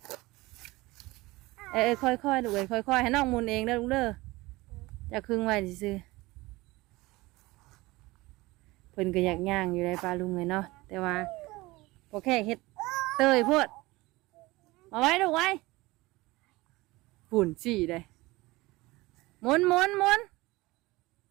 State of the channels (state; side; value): quieter; left; 20.9 dB